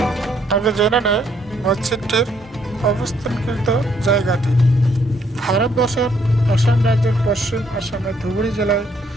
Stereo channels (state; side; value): normal; both; correlation 0.69